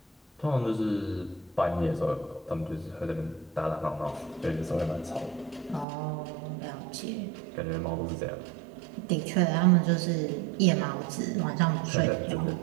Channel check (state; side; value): drops out; left; at 5.9 s